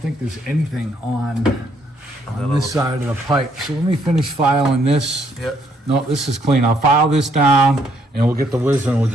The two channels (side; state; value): both; normal; correlation 0.70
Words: there's anything on this side of the pipe. So let me finish filing this. Yep. No, this is clean. I'll file this down, and we'll get the whizzer, and we'll